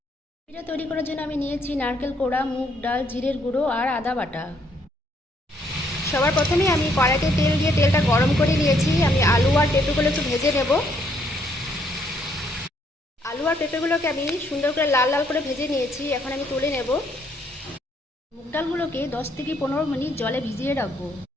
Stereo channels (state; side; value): normal; both; correlation 0.70